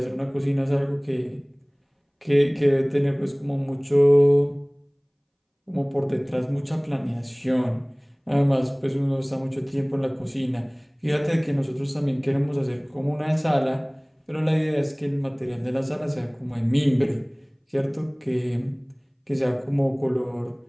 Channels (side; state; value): both; identical; correlation 1.00